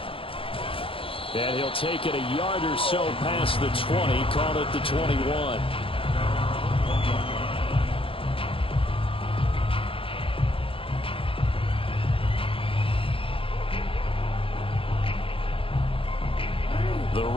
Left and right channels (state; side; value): late; right; 0.26 ms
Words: And he'll take it a yard or so past the 20, call it the 21. The